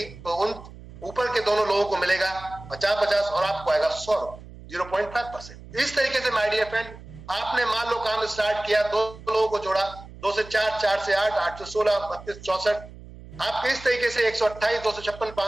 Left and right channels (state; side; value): noise; right; hum, 17 dB below the sound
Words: तो उन ऊपर के दोनों लोगों को मिलेगा 50-50 और आपको आएगा 100, 0.5%। इस तरीके से माय डियर फ्रेंड, आपने मान लो काम स्टार्ट किया, 2 लोगों को जोड़ा, 2 से 4, 4 से 8, 8 से 16, 32, 64, आपके इस तरीके से 128, 256,